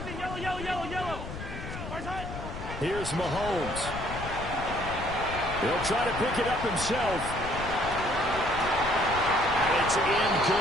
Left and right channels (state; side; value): noise; left; rumble, 9 dB below the sound